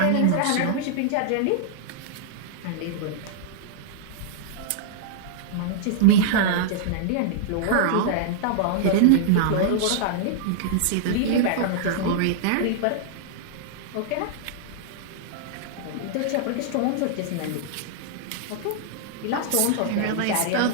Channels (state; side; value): different; both; correlation -0.01